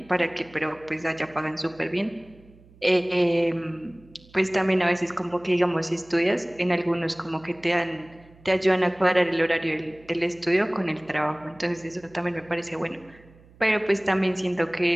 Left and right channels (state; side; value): noise; right; hum, 26 dB below the sound